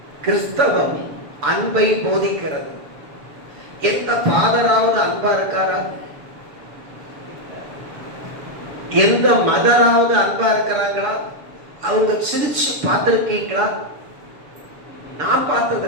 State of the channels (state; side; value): late; left; 6.9 ms